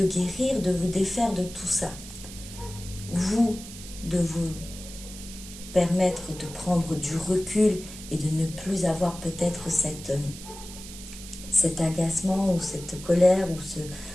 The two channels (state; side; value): noise; right; hiss, 14 dB below the sound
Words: guérir, de vous défaire de tout ça. Vous, de vous permettre de prendre du recul et de ne plus avoir peut-être cet agacement ou cette colère ou